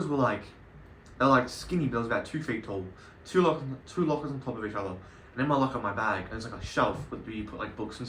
were like, they're like skinny, but it was about 2 feet tall. Two lockers on top of each other. And in my locker, my bag, and it's like a shelf where you put like books and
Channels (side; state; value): both; identical; correlation 1.00